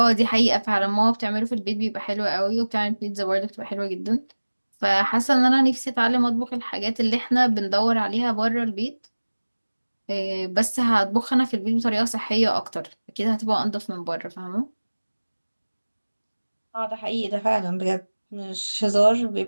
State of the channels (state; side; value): inverted; both; correlation -1.00